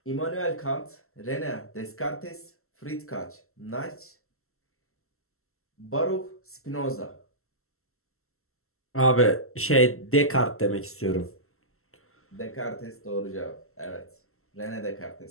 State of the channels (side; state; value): right; late; 0.62 ms